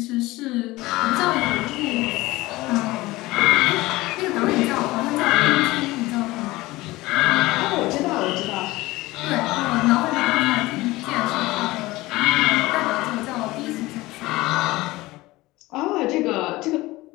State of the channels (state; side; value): quieter; right; 19.5 dB